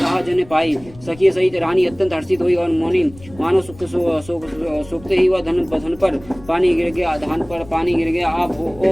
जन पाई। सखी सहित रानी अत्यंत हर्षित हुई और मौनी मानो सूखते ही वह धन पर पानी गिर गया, धान पर पानी गिर गया। आप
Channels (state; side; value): noise; left; rumble, 20 dB below the sound